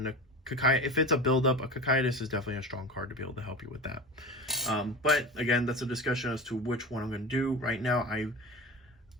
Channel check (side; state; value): both; normal; correlation 0.30